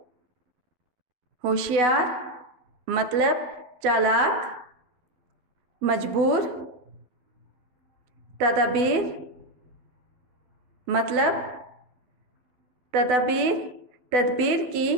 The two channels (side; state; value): left; late; 12 ms